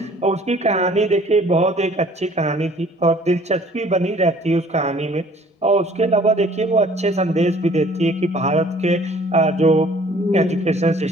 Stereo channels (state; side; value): normal; both; correlation 0.54